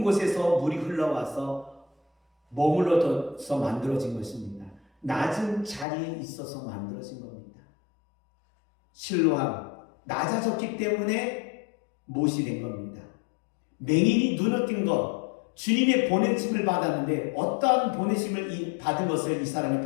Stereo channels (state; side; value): drops out; right; at 5.9 s